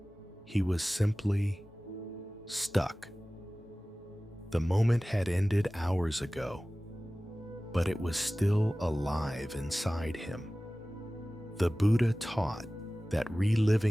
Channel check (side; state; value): both; normal; correlation 0.97